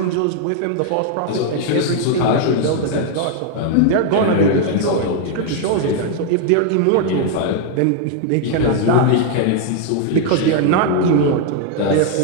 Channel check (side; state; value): both; different; correlation 0.00